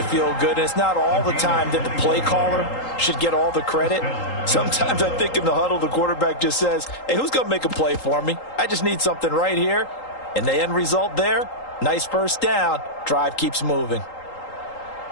feel good. And it's not all the time that the play caller should get all the credit. Sometimes I think in the huddle, the quarterback just says, hey, who's going to make a play for me? I just need something right here. And the end result there, nice first down. Drive keeps moving.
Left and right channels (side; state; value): right; late; 3.8 ms